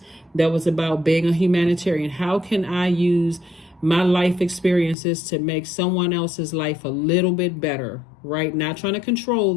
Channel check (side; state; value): right; drops out; at 5.0 s